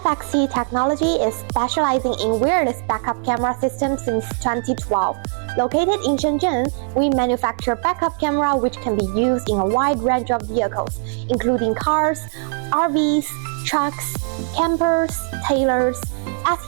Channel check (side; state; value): left; silent; 63 dB below the other